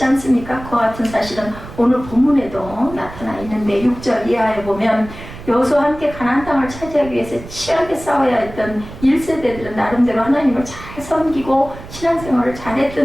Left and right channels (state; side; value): noise; right; rumble, 14 dB below the sound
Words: 않습니까? 그와 같은 사실은 오늘 본문에도 나타나 있는데 6절 이하에 보면 여호수아와 함께 가나안 땅을 차지하기 위해서 치열하게 싸워야 했던 1세대들은 나름대로 하나님을 잘 섬기고 신앙생활을